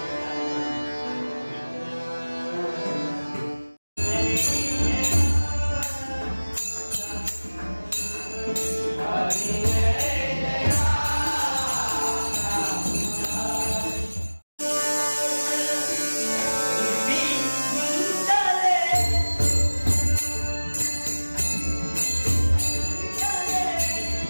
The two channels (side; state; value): both; inverted; correlation -1.00